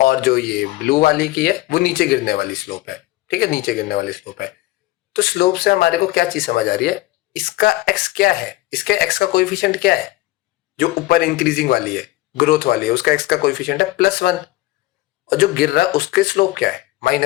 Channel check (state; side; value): quieter; right; 18.1 dB